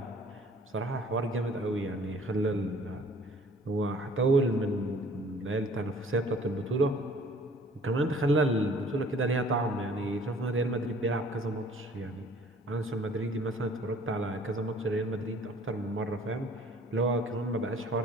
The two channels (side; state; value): both; normal; correlation 0.54